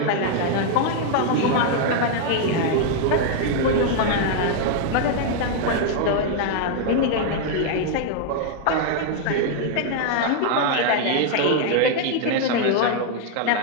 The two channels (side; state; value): both; different; correlation 0.00